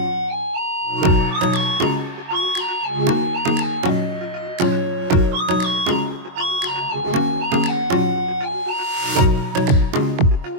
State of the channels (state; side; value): late; left; 22 ms